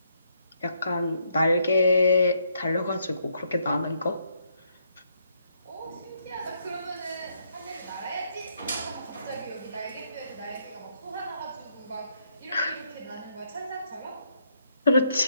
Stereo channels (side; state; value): both; inverted; correlation -0.74